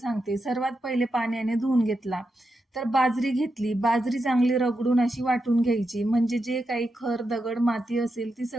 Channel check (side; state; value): both; normal; correlation 0.86